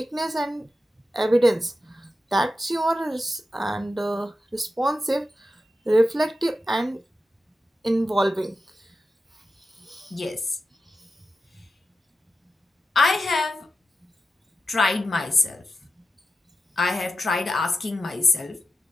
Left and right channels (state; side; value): normal; both; correlation 0.91